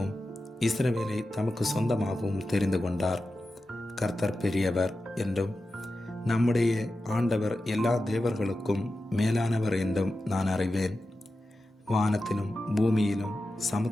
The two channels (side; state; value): both; normal; correlation 0.92